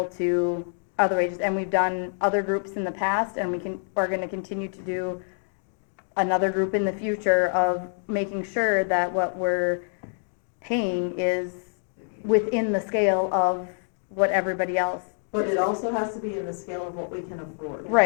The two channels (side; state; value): right; silent; digital silence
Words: to other wages? And we've done other groups in the past, and we're gonna continue to do another group in the future of making sure that what we're paying is within the scale of what everybody else. But it also has to be in the scale of what we can afford.